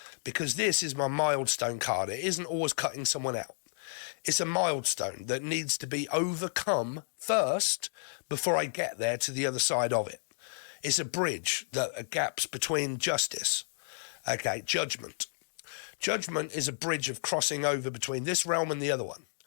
Because this is my milestone card. It isn't always cutting someone out. It's a milestone that needs to be overcome first before I get there to the other side of it. It's a bridge, a gaps between justice. Okay, judgment. Judgment is a bridge of crossing over between this realm and the other one,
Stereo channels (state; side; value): silent; right; digital silence